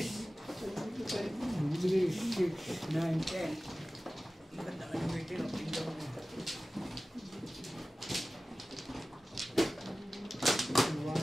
Sabi ko sa'yo. 3, 6, 9, 10. Ang ganda ka naman ito. Ang tingnan mo.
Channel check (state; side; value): normal; both; correlation 0.96